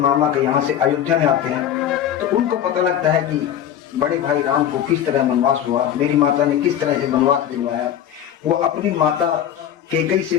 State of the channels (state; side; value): quieter; right; 10.0 dB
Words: के यहाँ से अयोध्या में आते हैं तो उनको पता लगता है कि बड़े भाई राम को किस तरह वनवास हुआ, मेरी माता ने किस तरह से वनवास दिलवाया। वो अपनी माता कैकेयी